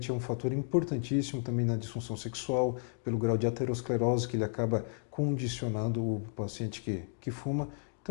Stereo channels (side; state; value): right; silent; 56 dB below the other